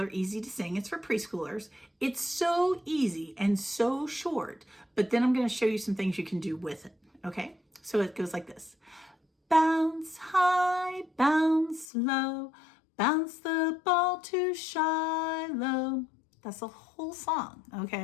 easy to sing. It's for preschoolers. It's so easy and so short, but then I'm going to show you some things you can do with it. Okay? So it goes like this. Bounce high, bounce low, bounce the ball to Shiloh. That's the whole song,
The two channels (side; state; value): right; drops out; at 11.9 s